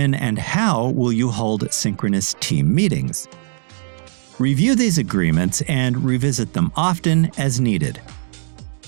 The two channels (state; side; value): silent; left; 66 dB below the other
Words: and how will you hold synchronous team meetings? Review these agreements and revisit them often as needed.